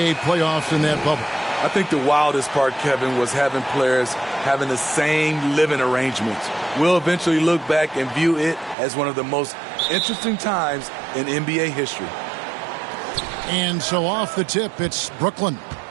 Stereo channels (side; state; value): left; drops out; at 8.8 s